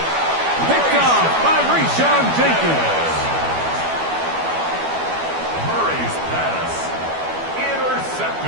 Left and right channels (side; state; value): left; late; 12 ms